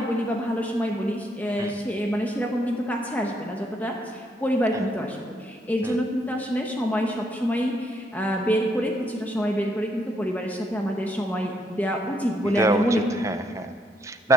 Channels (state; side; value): normal; both; correlation 0.74